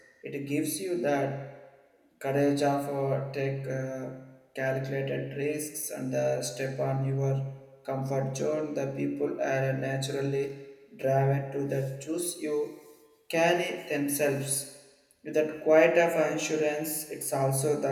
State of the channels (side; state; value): both; identical; correlation 1.00